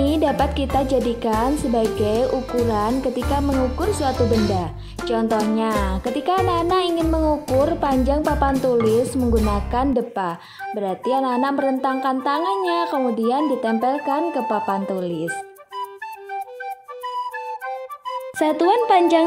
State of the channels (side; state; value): both; identical; correlation 1.00